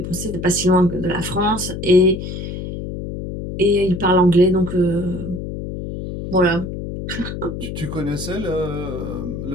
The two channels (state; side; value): noise; left; hum, 7 dB below the sound